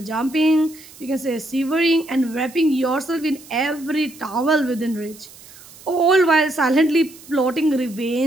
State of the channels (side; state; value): right; noise; hiss, 21 dB below the sound